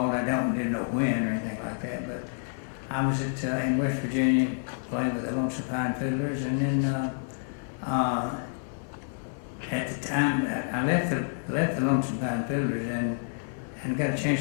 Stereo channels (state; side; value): silent; right; 59 dB below the other